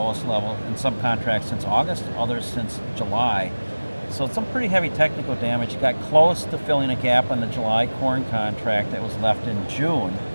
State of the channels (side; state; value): both; inverted; correlation -1.00